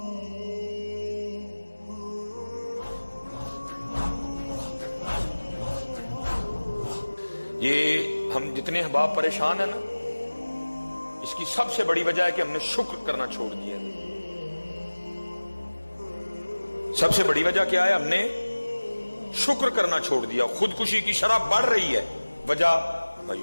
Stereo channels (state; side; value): inverted; both; correlation -1.00